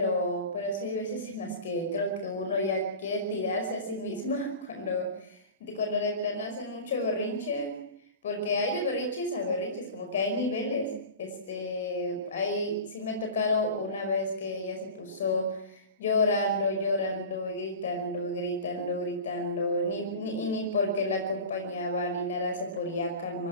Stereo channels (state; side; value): inverted; both; correlation -0.34